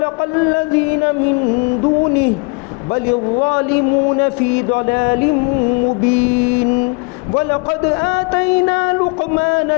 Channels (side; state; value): right; quieter; 31.8 dB